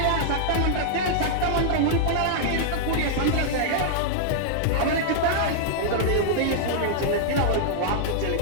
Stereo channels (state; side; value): different; both; correlation -0.02